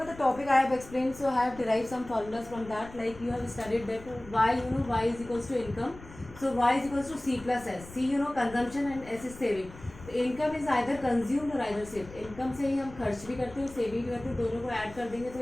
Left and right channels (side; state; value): left; noise; rumble, 18 dB below the sound